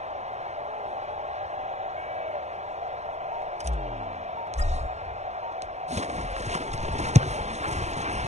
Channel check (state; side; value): late; left; 0.33 ms